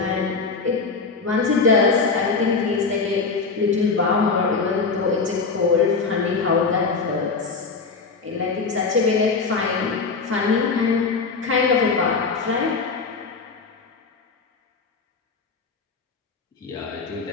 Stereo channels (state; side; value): quieter; right; 4.6 dB